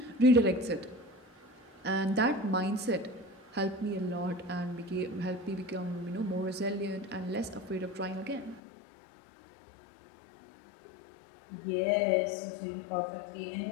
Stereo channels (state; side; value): drops out; right; at 8.6 s